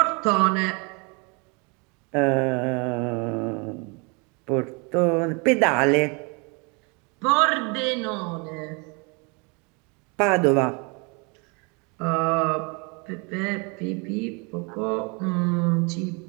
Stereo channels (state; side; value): quieter; left; 31.7 dB